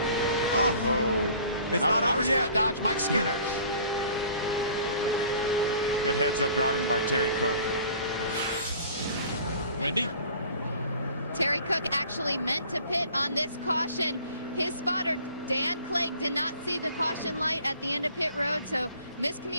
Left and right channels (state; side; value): inverted; both; correlation -0.50